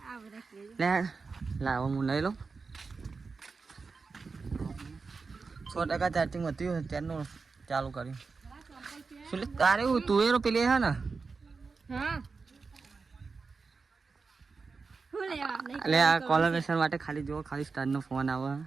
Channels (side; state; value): left; quieter; 4.6 dB